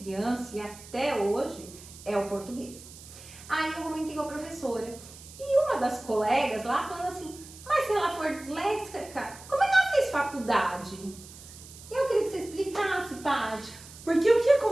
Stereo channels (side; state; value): right; noise; hiss, 18 dB below the sound